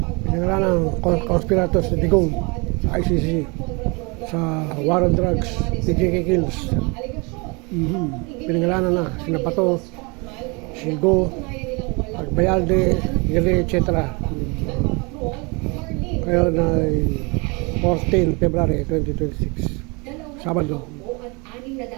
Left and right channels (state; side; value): quieter; left; 29.2 dB